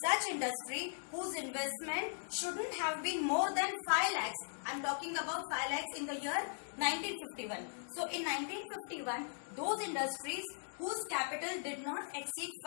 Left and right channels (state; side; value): silent; right; digital silence